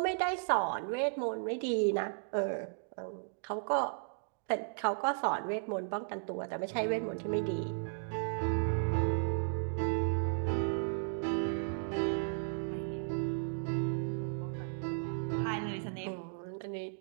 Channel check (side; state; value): left; silent; digital silence